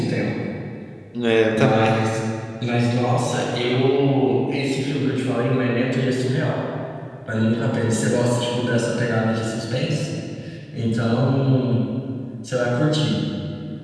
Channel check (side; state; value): both; identical; correlation 1.00